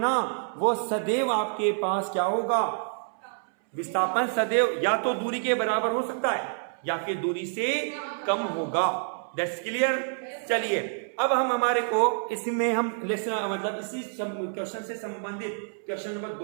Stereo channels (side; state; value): left; silent; 60 dB below the other